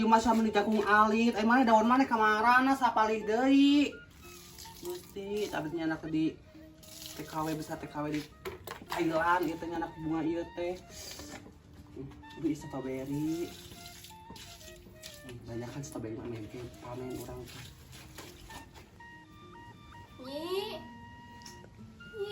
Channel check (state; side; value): identical; both; correlation 1.00